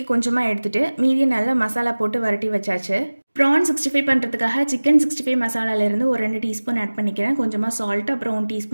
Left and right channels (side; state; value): both; inverted; correlation -1.00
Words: கொஞ்சமாக எடுத்துகிட்டு மீதியை நல்லா மசாலா போட்டு வரட்டி வச்சாச்சு. ப்ரான் 65 பண்ணுறதுக்காக சிக்கன் 65 மசாலாலேருந்து ஒரு 2 டீஸ்பூன் ஆட் பண்ணிக்கிறேன். கொஞ்சமாக சால்ட் அப்புறம் 1